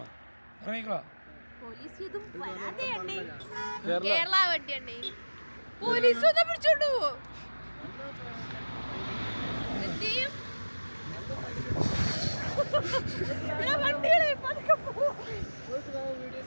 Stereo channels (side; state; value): both; inverted; correlation -1.00